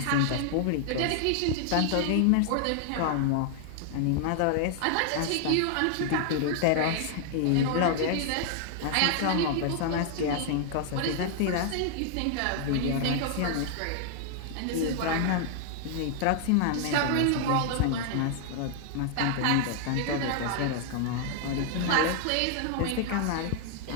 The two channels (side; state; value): both; different; correlation 0.00